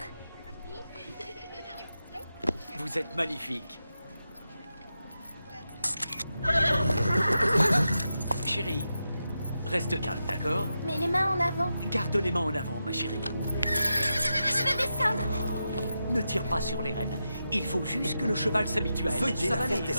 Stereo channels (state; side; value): inverted; both; correlation -0.88